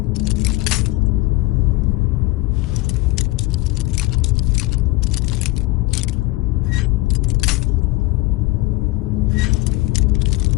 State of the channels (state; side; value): quieter; right; 20.2 dB